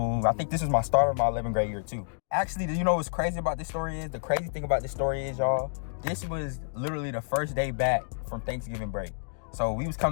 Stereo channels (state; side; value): silent; right; digital silence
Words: I think this was my start of my 11th grade year too. Actually, you know what's crazy about this story is? The crazy thing about this story is, y'all, this was literally the first day back from Thanksgiving break. So we was